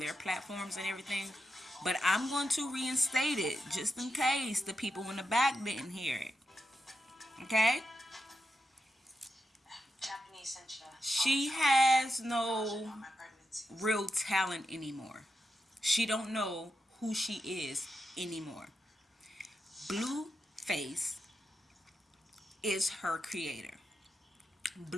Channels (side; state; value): both; normal; correlation 0.87